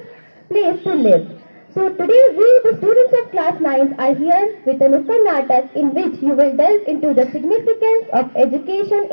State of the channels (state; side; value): inverted; both; correlation -1.00